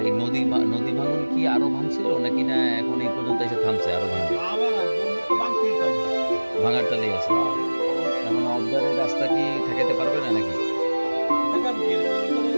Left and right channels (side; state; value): both; inverted; correlation -1.00